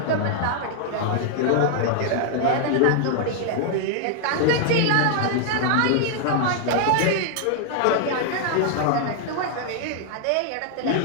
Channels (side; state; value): both; different; correlation 0.00